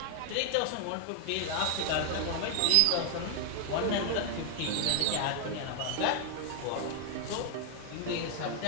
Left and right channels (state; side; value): different; both; correlation 0.00